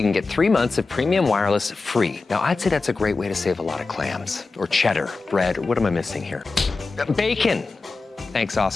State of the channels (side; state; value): right; quieter; 3.9 dB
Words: can get 3 months of premium wireless free. Now, I'd say that's a great way to save a lot of clams, or cheddar, bread, or what am I missing here? Bacon. Thanks,